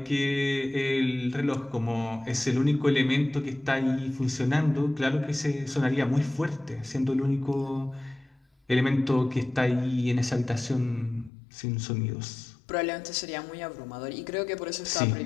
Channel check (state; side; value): drops out; right; at 11.3 s